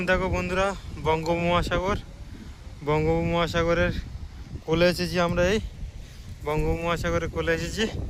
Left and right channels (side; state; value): both; identical; correlation 1.00